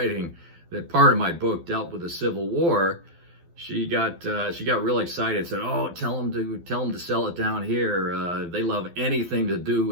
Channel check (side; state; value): left; late; 12 ms